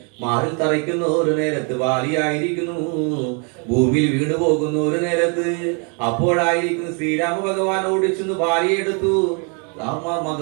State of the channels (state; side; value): quieter; left; 36.9 dB